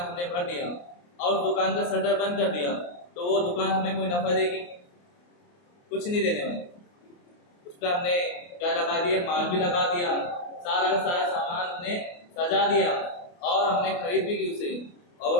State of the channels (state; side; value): late; right; 28 ms